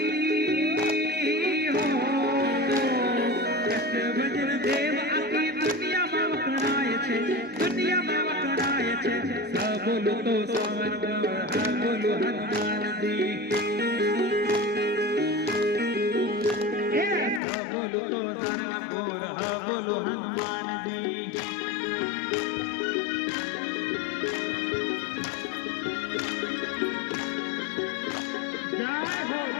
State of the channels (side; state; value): right; drops out; at 17.4 s